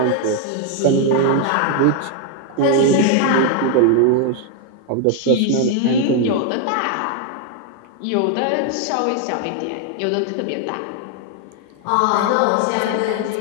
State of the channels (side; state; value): both; different; correlation 0.00